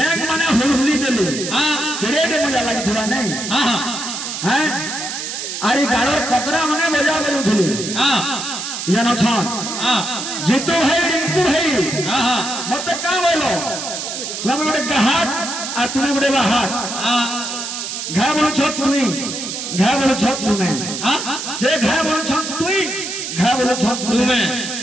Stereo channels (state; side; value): noise; right; hiss, 5 dB below the sound